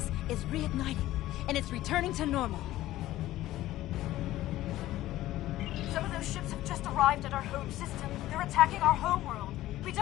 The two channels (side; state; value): right; quieter; 15.2 dB